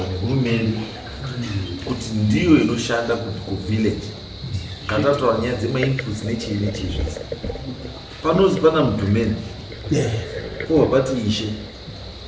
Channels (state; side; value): identical; both; correlation 1.00